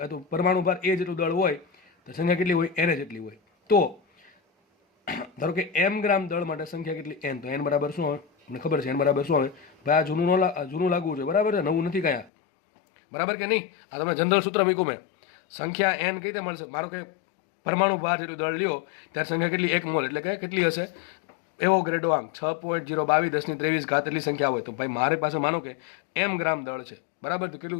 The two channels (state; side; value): drops out; right; at 12.3 s